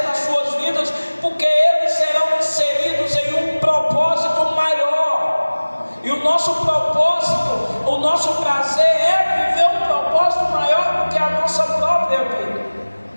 nas suas vidas, porque eles serão inseridos em um propósito maior. E o nosso propósito, o nosso prazer é viver um propósito maior do que a nossa própria vida.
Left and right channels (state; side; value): inverted; both; correlation -1.00